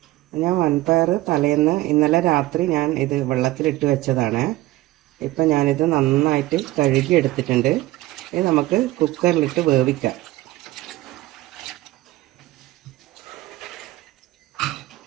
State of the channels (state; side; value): quieter; left; 17.5 dB